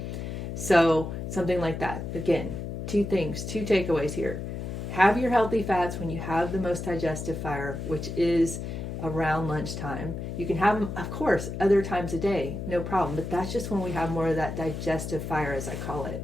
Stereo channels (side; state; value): left; noise; hum, 6 dB below the sound